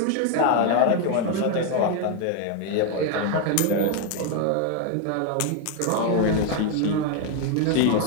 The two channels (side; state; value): both; different; correlation 0.01